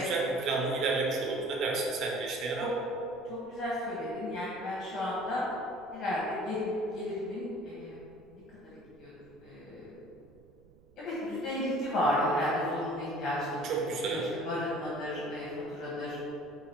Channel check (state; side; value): noise; right; rumble, 26 dB below the sound